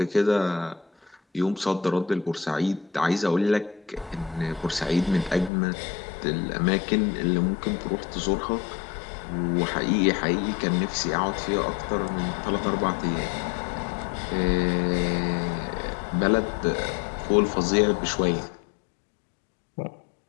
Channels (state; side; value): drops out; right; at 5.5 s